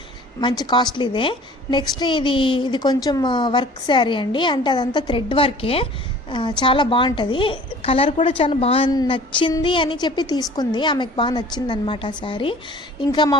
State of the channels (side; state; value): both; normal; correlation 0.48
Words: మంచి కాస్ట్లీదే. నెక్స్ట్ ఇది కొంచెం వర్క్ శారీ అండి, అంటే అదంతా థ్రెడ్ వర్కే. చాలా బాగుంటుంది. కలర్ కూడా చాలా బాగా నచ్చింది అని చెప్పి తీసుకుంది. ఆమెకు బాగా నచ్చింది అనమాట ఆ శారీ. ఇంకా మా